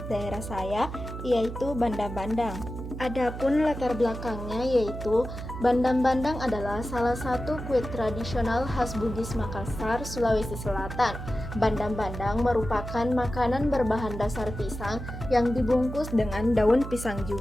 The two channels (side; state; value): right; noise; hum, 8 dB below the sound